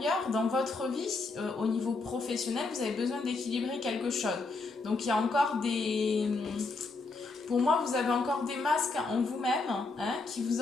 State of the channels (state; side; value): quieter; right; 3.7 dB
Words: dans votre vie, au niveau professionnel, vous avez besoin d'équilibrer quelque chose. Donc il y a encore pour moi, vous avez encore des masques en vous-même, hein, qui vous